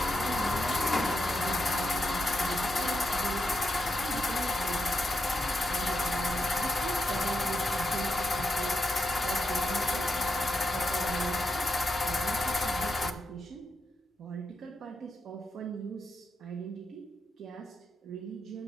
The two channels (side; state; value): both; normal; correlation 0.85